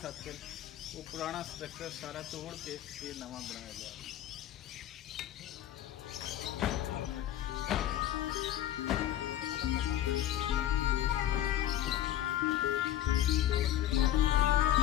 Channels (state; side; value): quieter; right; 12.1 dB